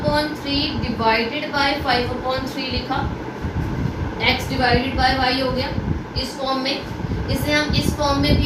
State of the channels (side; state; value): both; identical; correlation 1.00